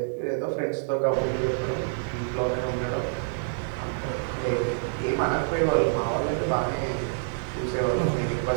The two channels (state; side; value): silent; left; digital silence